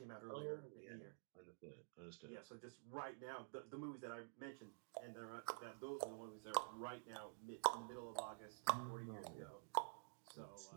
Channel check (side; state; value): left; silent; digital silence